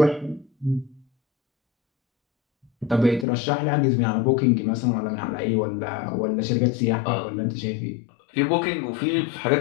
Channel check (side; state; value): right; drops out; at 3.2 s